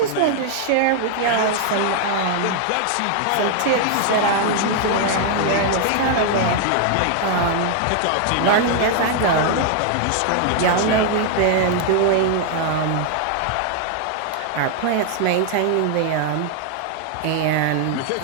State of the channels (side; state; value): both; different; correlation 0.00